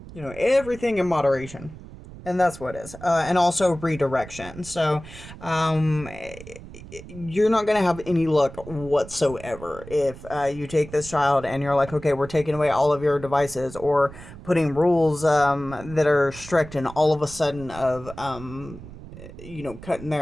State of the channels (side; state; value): right; noise; rumble, 15 dB below the sound